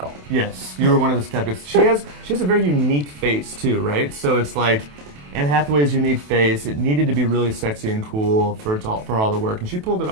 Yes, you were one of the skeptics. She has a very unique face too, right? So it's like Anne Hathaway's unique face. It needed to be really sexy and cool for all the work, and she pulled it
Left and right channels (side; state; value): left; late; 28 ms